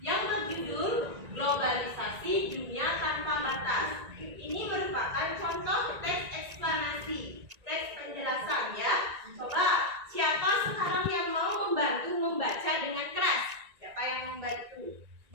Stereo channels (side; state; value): left; late; 1.9 ms